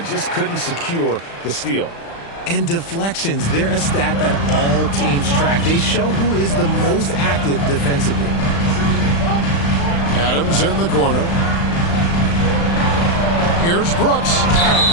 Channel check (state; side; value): late; right; 35 ms